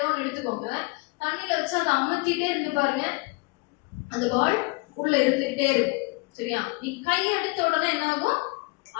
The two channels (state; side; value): quieter; right; 27.3 dB